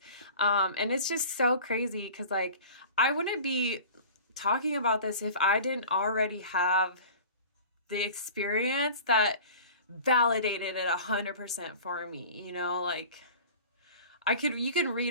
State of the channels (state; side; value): inverted; both; correlation -0.41